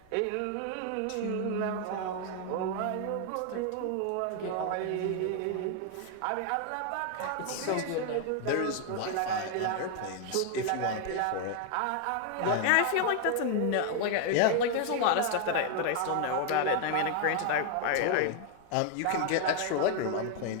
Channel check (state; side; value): different; both; correlation 0.00